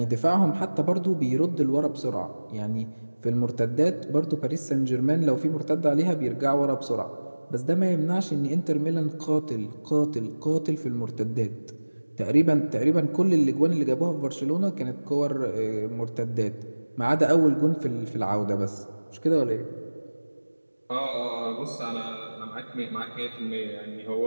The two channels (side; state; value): both; inverted; correlation -1.00